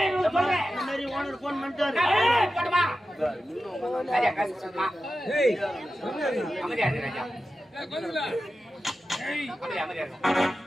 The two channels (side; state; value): both; normal; correlation 0.93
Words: இந்த மாதிரி ஓனர் போன் பண்ணிட்டாரு